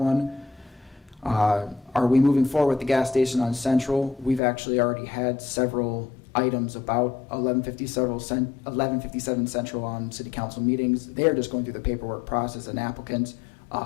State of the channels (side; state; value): right; drops out; at 4.4 s